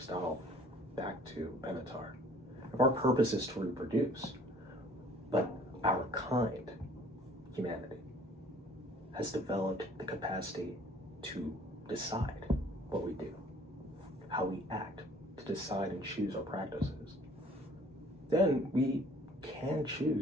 back to Benatar, if our purpose is to reproduce, but our kind, humanity, has developed the capacity to decide what we do, how we act, to decide and choose our practices, then we can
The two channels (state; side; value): normal; both; correlation 0.54